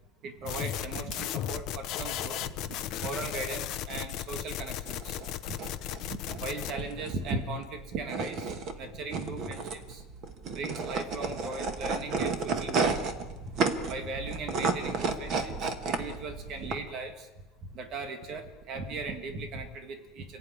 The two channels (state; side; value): normal; both; correlation 0.32